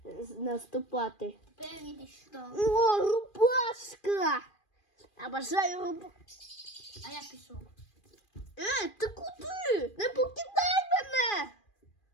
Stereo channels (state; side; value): late; right; 2.4 ms